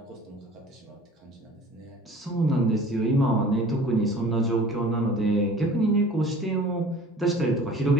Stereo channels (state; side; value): normal; both; correlation 0.45